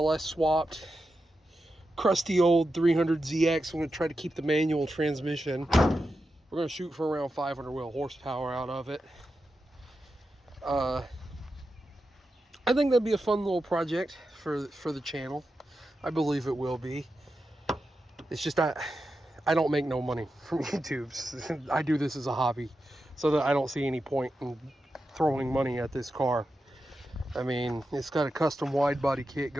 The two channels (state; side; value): normal; both; correlation 0.89